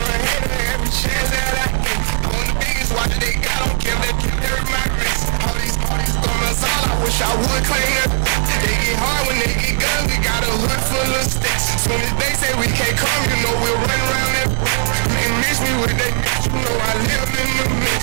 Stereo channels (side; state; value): left; silent; digital silence